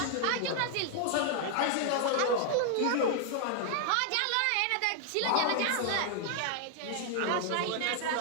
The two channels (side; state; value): both; different; correlation 0.00